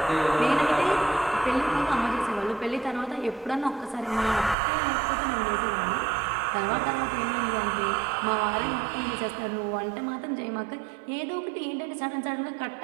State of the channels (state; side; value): drops out; left; at 4.5 s